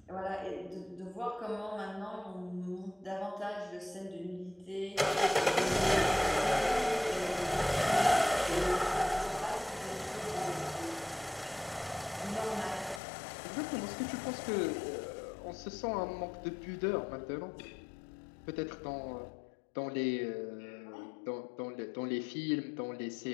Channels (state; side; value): drops out; right; at 13.0 s